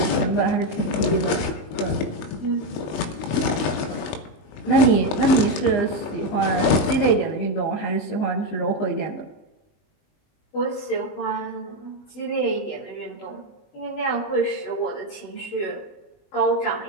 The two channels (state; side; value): late; right; 20 ms